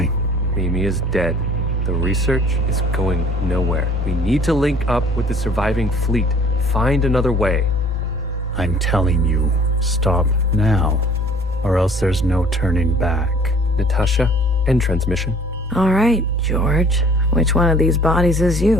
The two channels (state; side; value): normal; both; correlation 0.53